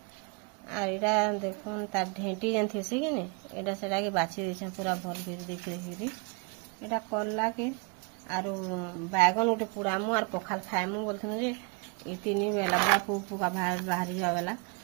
एटा देखुन तार ढेंटी जेन थी कि नहीं एटा सेटा के बाछी देछन पूरा भल भेज देख देखी एटा करला के और बैगन उठे पुरामु और पखाल खाएमु बोलथन जे ई तीन बेला बड़ा पुका बाहरी जावेला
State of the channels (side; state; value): left; quieter; 33.1 dB